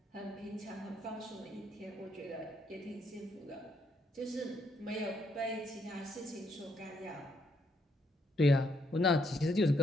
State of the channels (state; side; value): normal; both; correlation 0.74